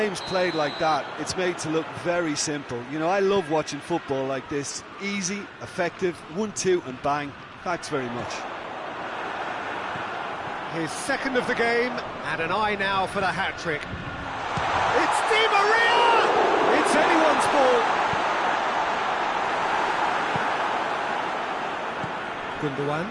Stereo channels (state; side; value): identical; both; correlation 1.00